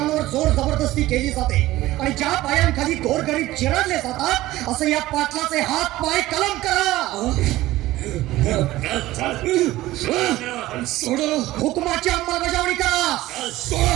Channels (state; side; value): quieter; left; 16.7 dB